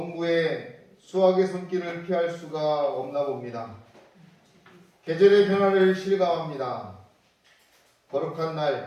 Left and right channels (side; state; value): both; identical; correlation 1.00